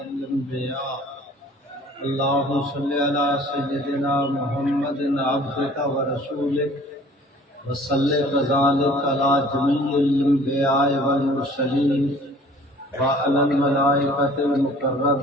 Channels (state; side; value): normal; both; correlation 0.51